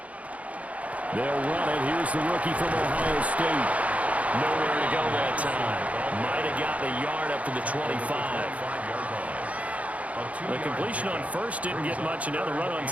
They'll run it. Here's the rookie from Ohio State. Nowhere to go that time. Might have gotten a yard up to the 25. The completion on first didn't get much, and now the run on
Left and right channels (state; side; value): late; left; 0.067 ms